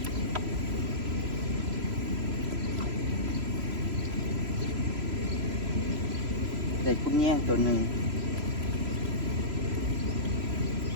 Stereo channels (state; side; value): late; left; 3.0 ms